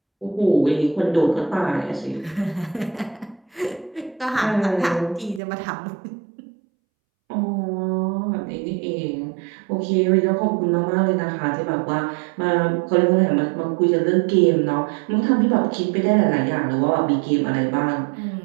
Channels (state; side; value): drops out; left; at 5.4 s